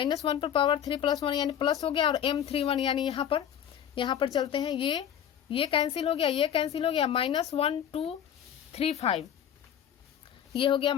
पर पावर 3 + 1 यानी प्लस हो गया, और M31 यानी यहाँ पर चलते हैं, ये कैंसिल हो गया, ये कैंसिल हो गया, -1 2 3 5, ये हो गया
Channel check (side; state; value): right; quieter; 9.5 dB